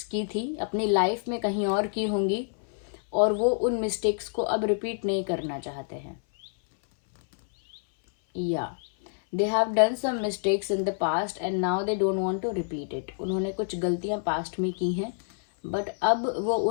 की थी, अपनी लाइफ में कहीं और की होंगी, और वो उन मिस्टेक्स को अब रिपीट नहीं करना चाहते हैं, या they have done some mistakes in the past and now they don't want to repeat it. उन्होंने कुछ गलतियां पास्ट में की हैं, बट अब वो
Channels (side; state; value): right; silent; 58 dB below the other